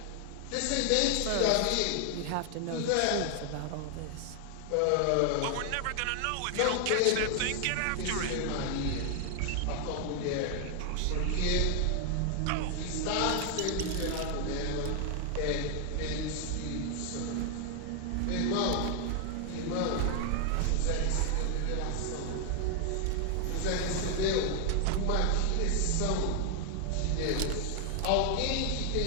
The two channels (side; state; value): both; different; correlation 0.00